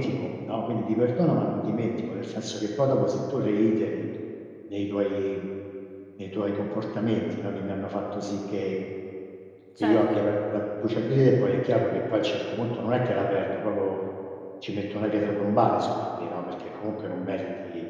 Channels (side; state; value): both; identical; correlation 1.00